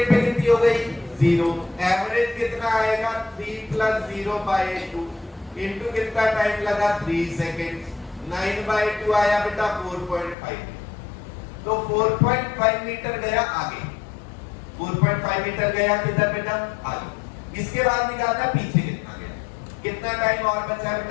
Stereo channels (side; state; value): right; drops out; at 10.4 s